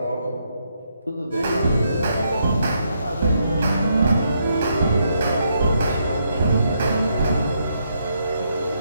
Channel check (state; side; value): inverted; both; correlation -0.77